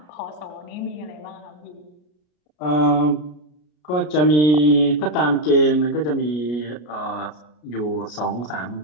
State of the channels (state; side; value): late; right; 33 ms